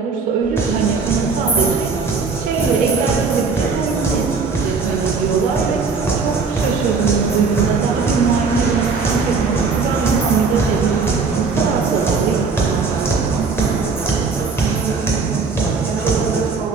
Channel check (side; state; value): left; quieter; 4.7 dB